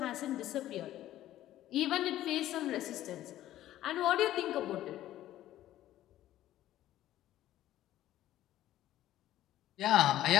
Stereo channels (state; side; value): quieter; right; 13.6 dB